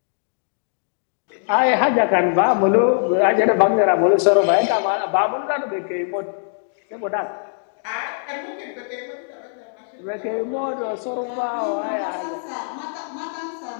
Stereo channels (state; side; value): silent; right; digital silence